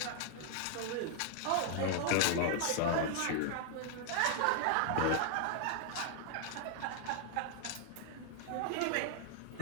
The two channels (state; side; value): different; both; correlation -0.01